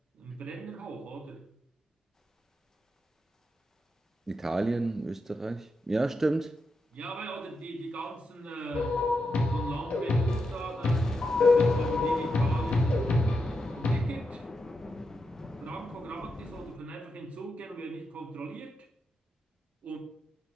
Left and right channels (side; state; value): both; normal; correlation 0.86